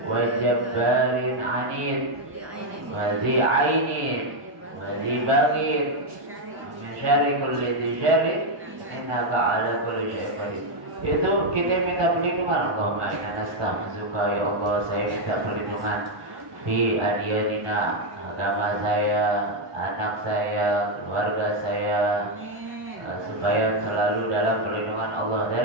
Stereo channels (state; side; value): late; left; 1.5 ms